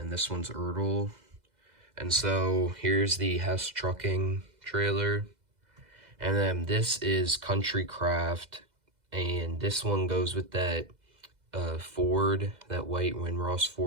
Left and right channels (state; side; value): late; left; 2.0 ms